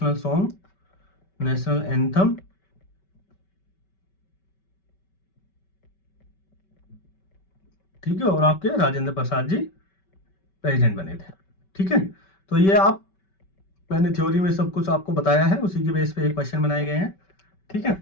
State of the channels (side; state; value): right; late; 5.2 ms